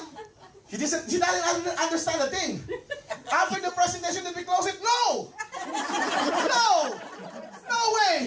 He doesn't understand a thing. After the presentation, did we close it? No! No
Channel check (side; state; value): both; identical; correlation 1.00